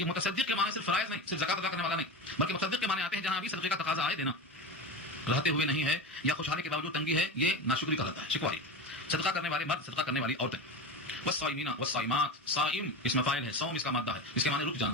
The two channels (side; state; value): both; normal; correlation 0.25